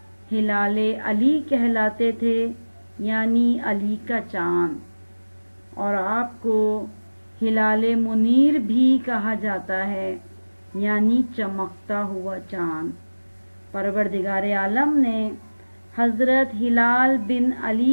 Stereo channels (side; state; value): both; inverted; correlation -1.00